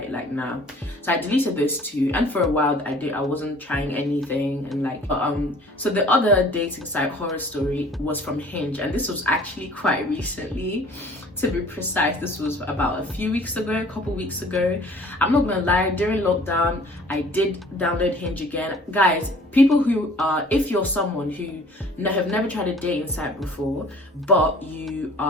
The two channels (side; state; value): both; normal; correlation 0.51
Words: like nah. So I deleted those two, and for a while I wasn't trying anything, and like so the other dating site, Horror Story, was from Hinge, and this was actually quite recently. To be precise, this was about a couple weeks ago. I'm not gonna lie, during lockdown, I did download Hinge again. Guys, people who if you're someone who have never tried a dating site before, but you